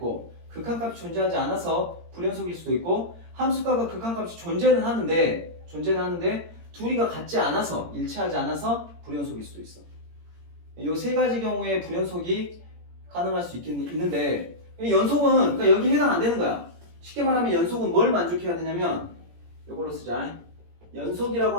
극한값이 존재하지 않아서 불연속일 수도 있고 함수값과 극한값이 존재는 하는데 둘이가 같지 않아서 일치하지 않아서 불연속일 수도 있어. 이 세 가지 경우에 불연속이 가능할 수 있는데 연속은 그러니까 여기 해당 안 되는 거야. 쉽게 말하면 연속은 뭘 만족해야 되냐면 이걸로 쓰자. 연속이라고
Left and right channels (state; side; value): late; left; 17 ms